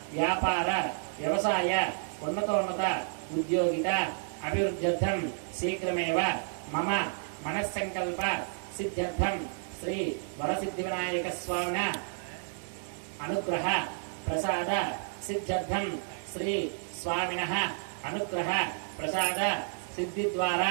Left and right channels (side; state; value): left; silent; digital silence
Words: व्यापार व्यवसाय उन्नतोन्नत उद्योगित अभिवृद्ध्यर्थं शीघ्रमेव मम मनस्संकल्प सिद्ध्यर्थं श्री वरसिद्धिविनायक स्वामिना अनुग्रह प्रसाद सिद्ध्यर्थं श्री स्वामिनः अनुग्रह प्रसाद सिद्धि द्वारा